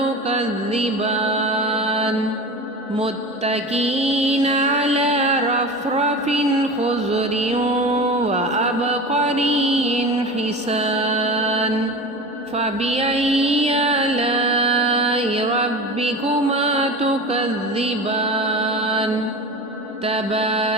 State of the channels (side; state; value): both; normal; correlation 0.31